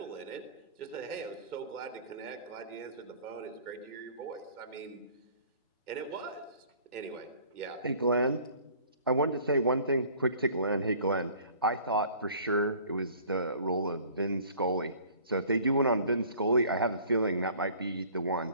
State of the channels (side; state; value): both; inverted; correlation -0.52